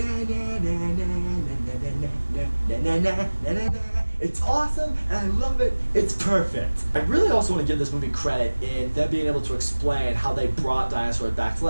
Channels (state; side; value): inverted; both; correlation -1.00